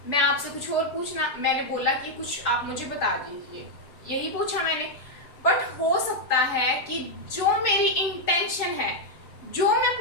मैं आपसे कुछ और पूछना, मैंने बोला कि कुछ आप मुझे बता दीजिए, यही पूछा मैंने। बट हो सकता है कि जो मेरी इंटेंशन है, जो मैं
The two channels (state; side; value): late; right; 7.2 ms